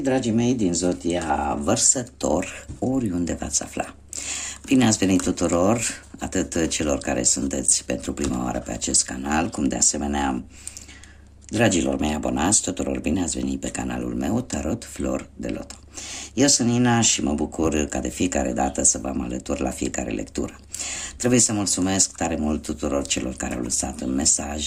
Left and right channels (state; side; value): identical; both; correlation 1.00